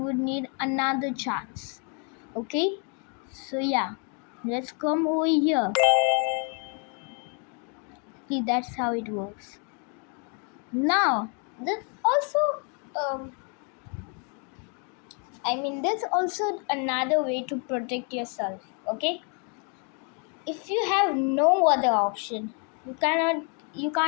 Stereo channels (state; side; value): quieter; right; 38.4 dB